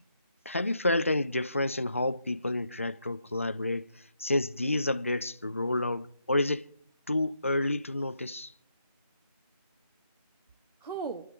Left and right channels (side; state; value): both; inverted; correlation -0.78